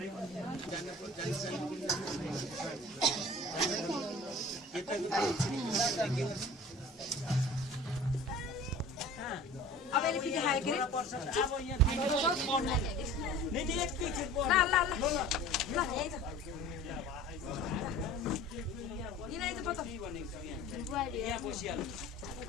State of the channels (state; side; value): normal; both; correlation 0.43